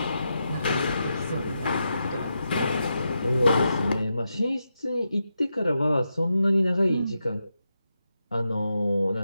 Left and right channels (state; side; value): inverted; both; correlation -0.86